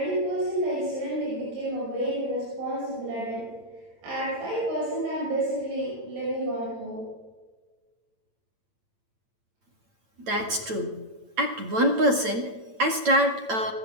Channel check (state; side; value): late; left; 8.9 ms